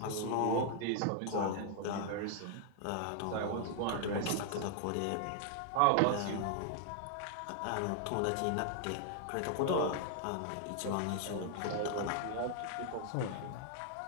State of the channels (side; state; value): both; different; correlation 0.00